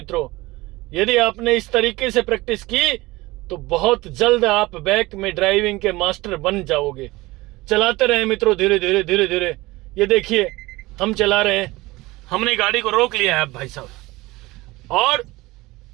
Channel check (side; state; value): left; quieter; 20.5 dB